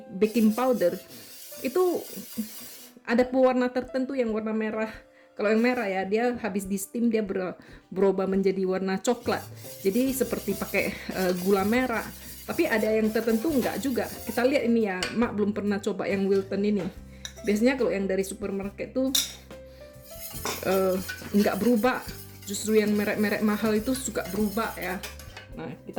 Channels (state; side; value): identical; both; correlation 1.00